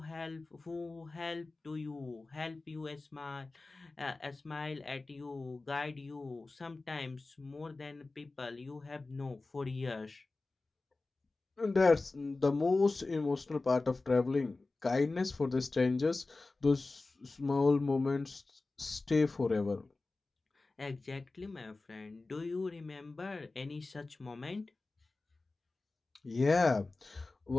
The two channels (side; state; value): right; quieter; 3.4 dB